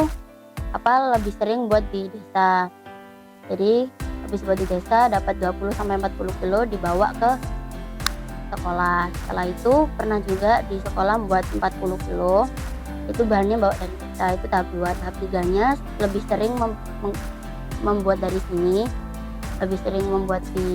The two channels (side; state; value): both; identical; correlation 1.00